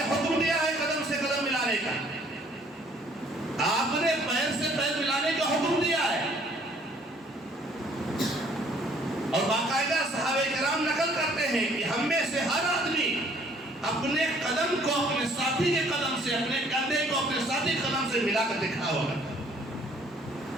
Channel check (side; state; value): both; normal; correlation 0.60